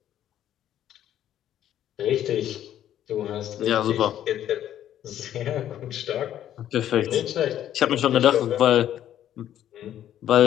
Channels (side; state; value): right; quieter; 11.3 dB